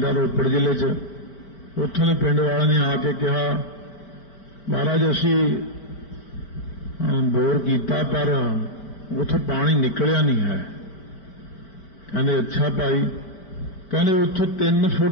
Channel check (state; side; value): late; right; 5.1 ms